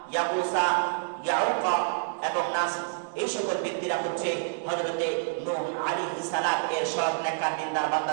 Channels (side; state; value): left; silent; 59 dB below the other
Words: ইয়াগুসা, ইয়াউকা এবং নাস, এই সকল ব্যক্তিরা হচ্ছে হযরতে নূহ আলাইহিস সালাম এর সব নেককার দিনদার